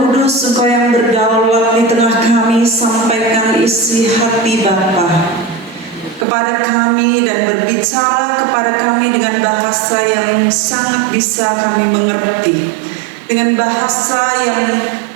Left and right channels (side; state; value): left; drops out; at 6.2 s